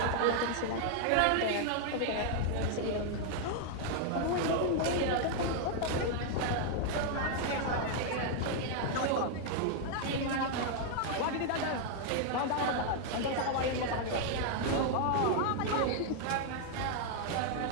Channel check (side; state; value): both; different; correlation 0.00